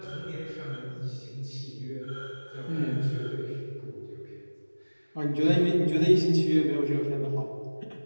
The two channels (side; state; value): both; inverted; correlation -1.00